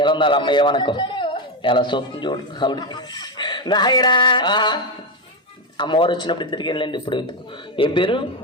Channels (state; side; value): normal; both; correlation 0.09